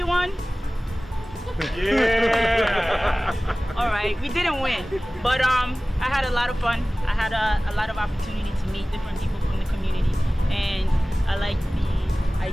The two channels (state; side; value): normal; both; correlation 0.98